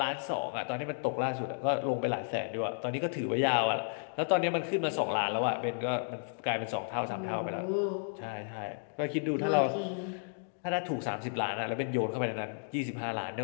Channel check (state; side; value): silent; right; digital silence